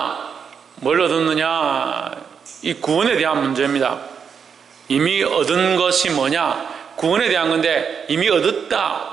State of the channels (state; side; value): quieter; left; 6.7 dB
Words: 뭘 얻었느냐? 이 구원에 대한 문제입니다. 이미 얻은 것이 뭐냐? 구원에 대한 건데, 이미 얻었다,